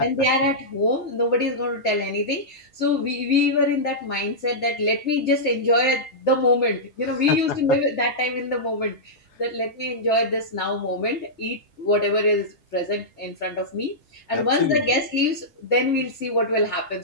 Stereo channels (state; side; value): normal; both; correlation -0.12